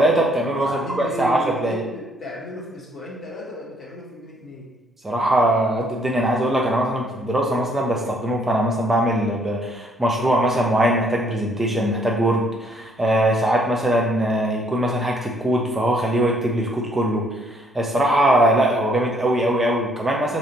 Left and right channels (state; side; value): normal; both; correlation 0.66